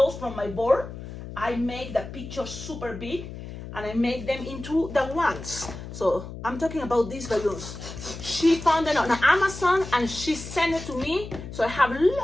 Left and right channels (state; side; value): noise; left; hum, 11 dB below the sound